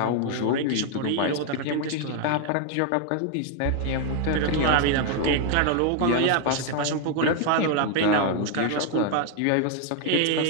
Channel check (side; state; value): both; different; correlation 0.00